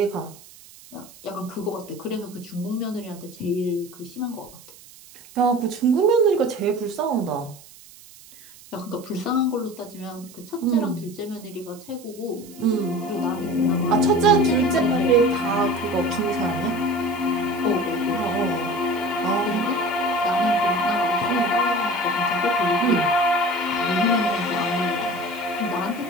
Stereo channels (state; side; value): noise; right; hiss, 21 dB below the sound